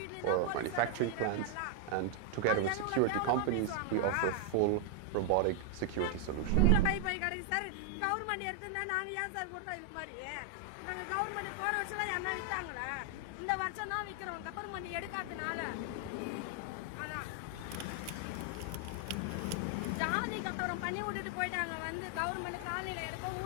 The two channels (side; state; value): both; different; correlation 0.00